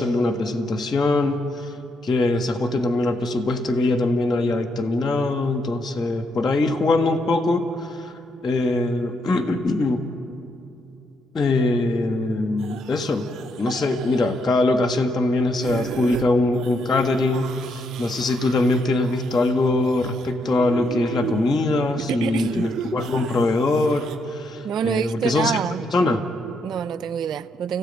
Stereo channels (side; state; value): both; normal; correlation 0.77